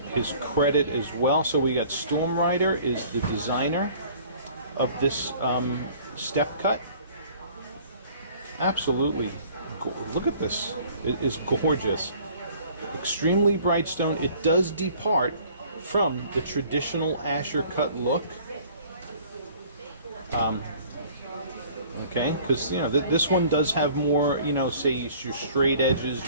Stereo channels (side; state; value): both; inverted; correlation -0.52